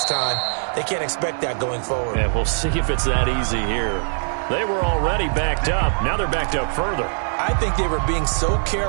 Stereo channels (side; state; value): left; silent; digital silence